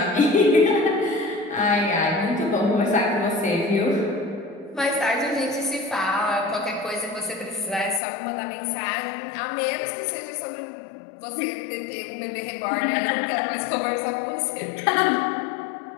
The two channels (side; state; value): right; drops out; at 8.0 s